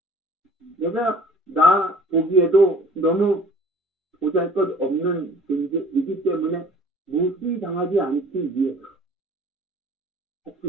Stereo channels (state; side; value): normal; both; correlation 0.50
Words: 내가 나 보기에도 너무 보잘것없는 존재이기 때문에 무시당하지 않기 위해서